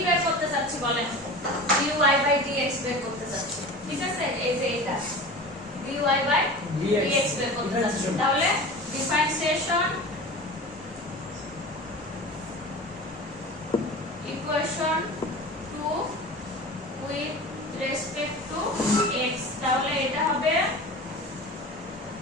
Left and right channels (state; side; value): normal; both; correlation 0.35